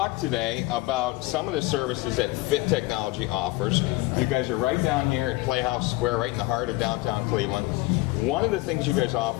today about some of the services that Fit Technology offers. You guys are right down here at Playhouse Square, right in the heart of downtown Cleveland. One of the things you guys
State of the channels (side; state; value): right; quieter; 20.4 dB